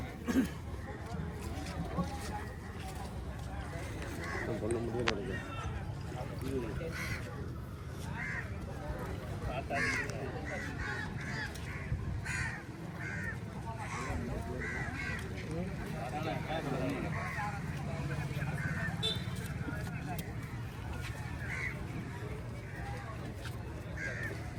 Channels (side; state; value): both; identical; correlation 1.00